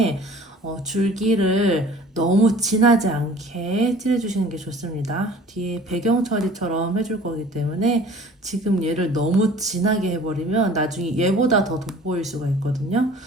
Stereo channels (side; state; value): both; normal; correlation 0.48